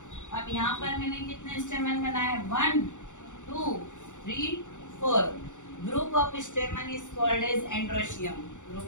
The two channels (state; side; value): late; right; 0.85 ms